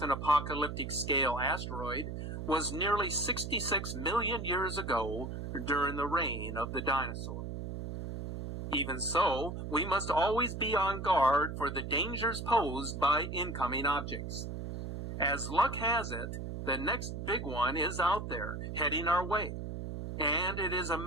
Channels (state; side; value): noise; right; hum, 6 dB below the sound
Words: an apocalyptic-scale asteroid was nearly 66 million years ago during the reign of the dinosaurs. Even so, we must always be on guard for the dangers posed by incoming objects. As luck has it, the next big one is out there, heading our way, and it is a